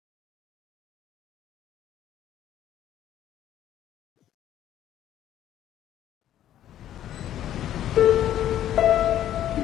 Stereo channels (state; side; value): quieter; right; 11.7 dB